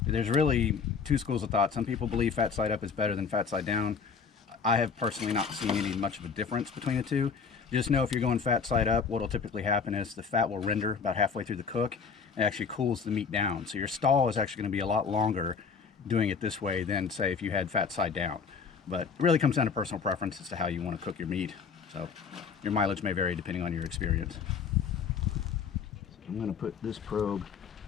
There's really 2 schools of thought. Some people believe fat side up is better than fat side down. I have personally not seen any much of a difference between the two. Just know if you're going fat side up, what will typically happen is the fat will render about halfway through the cook and actually cools the meat down. So your stall is actually going to be a lot longer doing it this way than, say, if you had fat side down. But it really comes down to personal preference as to how you want to cook your meat. So your mileage may vary depending on your experience. I'm going to put this probe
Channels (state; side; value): quieter; right; 5.9 dB